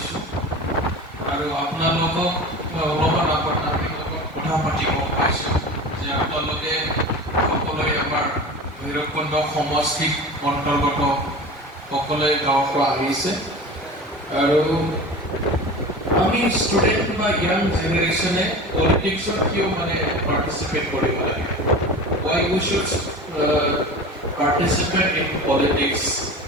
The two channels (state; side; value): normal; both; correlation 0.33